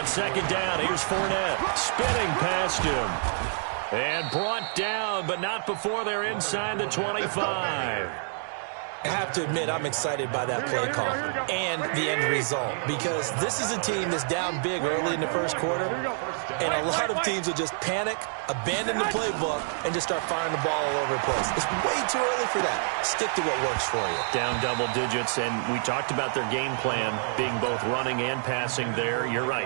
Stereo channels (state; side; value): silent; left; digital silence